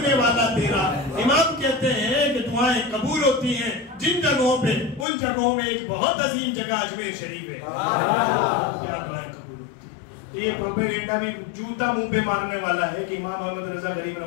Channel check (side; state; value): right; drops out; at 5.1 s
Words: والا تیرا. امام کہتے ہیں کہ دعائیں قبول ہوتی ہیں جن جگہوں پہ, ان جگہوں میں ایک بہت عظیم جگہ اجمیر شریف ہے, کیا دعائیں قبول ہوتی ہیں. تو یہ پروپیگنڈا بھی جوتا منہ پہ مارنے والا ہے کہ امام احمد رضا غریب